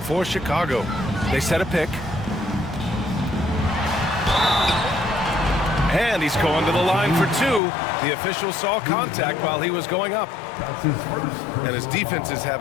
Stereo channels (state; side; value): drops out; right; at 7.6 s